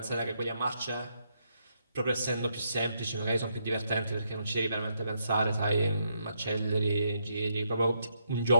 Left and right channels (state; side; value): inverted; both; correlation -0.77